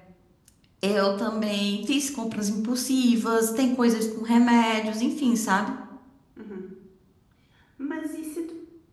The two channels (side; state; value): both; identical; correlation 1.00